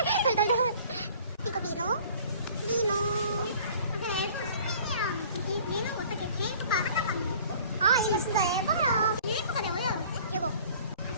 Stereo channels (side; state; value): both; inverted; correlation -0.50